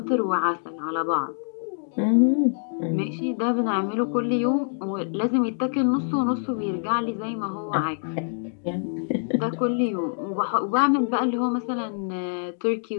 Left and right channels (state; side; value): silent; right; digital silence